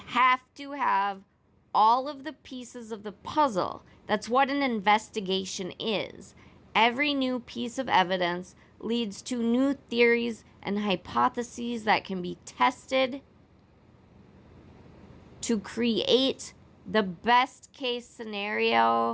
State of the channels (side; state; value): both; identical; correlation 1.00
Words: to have all of the pieces of the puzzle. That's what an investigation is. Every new piece of evidence leads to new theories and hypotheses that can be tested to create the best case